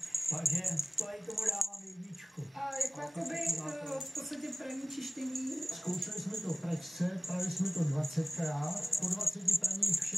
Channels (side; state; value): both; normal; correlation 0.97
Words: takže to i tomu dávám jedničku. A jako jakoby v podstatě praní čištění? Zkoušeli jsme to v pračce, prali jsme to 20krát, po 20 praních